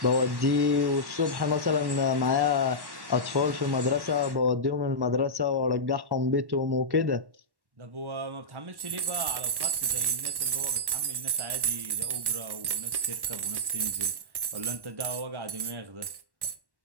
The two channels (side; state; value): left; late; 1.1 ms